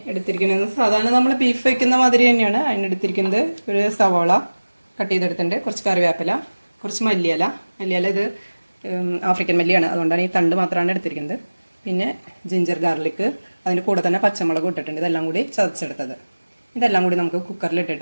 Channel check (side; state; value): both; inverted; correlation -1.00